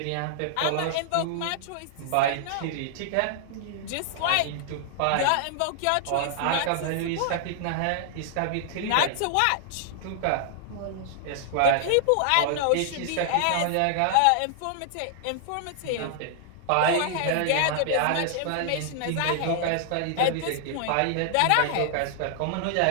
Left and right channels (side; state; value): both; different; correlation -0.01